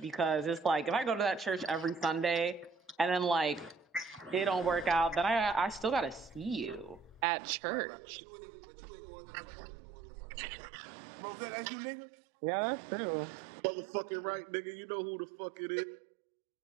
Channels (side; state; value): left; drops out; at 7.2 s